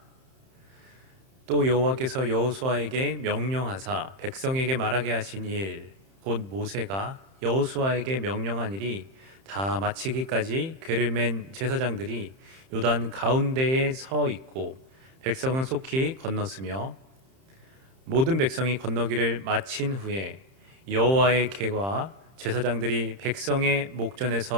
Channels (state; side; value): late; left; 31 ms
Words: 또 여호와께서 여호수아에게 명령하사 백성에게 말하게 하신 일, 곧 모세가 여호수아에게 명령한 일이 다 마치기까지 궤를 맨 제사장들이 요단 가운데에 서 있고 백성은 속히 건넜으며, 모든 백성이 건너기를 마친 후에 여호와의 궤와 제사장들이 백성의